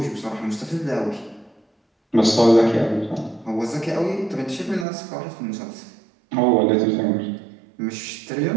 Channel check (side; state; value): left; drops out; at 4.9 s